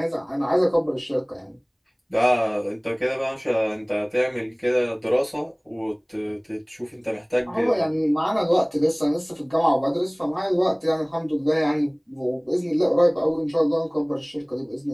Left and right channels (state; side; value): identical; both; correlation 1.00